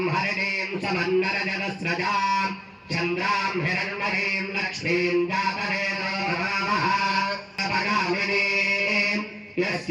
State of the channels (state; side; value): identical; both; correlation 1.00